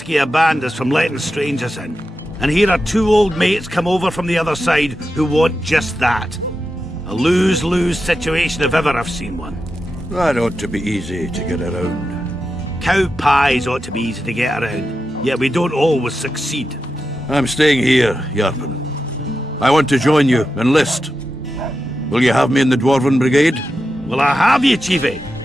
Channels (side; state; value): both; normal; correlation 0.89